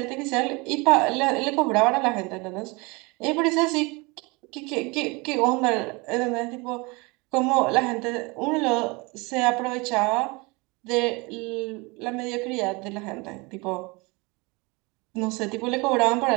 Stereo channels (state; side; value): quieter; left; 26.6 dB